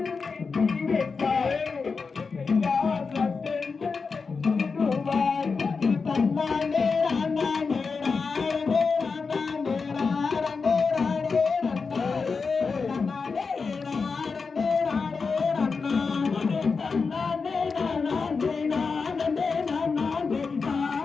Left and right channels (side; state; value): right; quieter; 4.8 dB